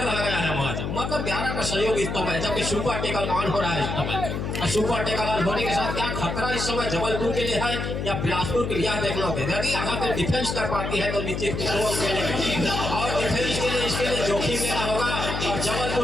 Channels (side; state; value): left; noise; hum, 3 dB below the sound